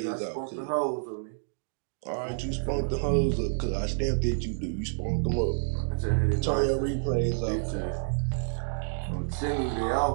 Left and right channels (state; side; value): silent; left; digital silence